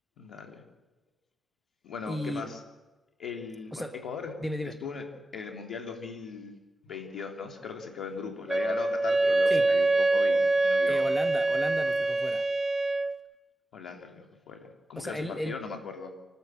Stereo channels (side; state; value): both; normal; correlation 0.94